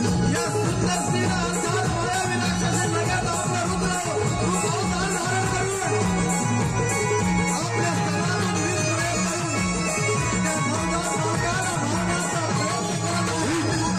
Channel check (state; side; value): identical; both; correlation 1.00